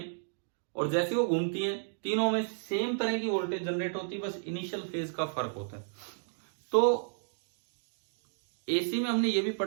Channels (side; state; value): left; silent; digital silence